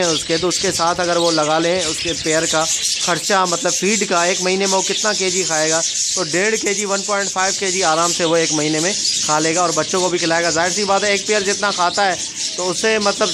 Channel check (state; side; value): identical; both; correlation 1.00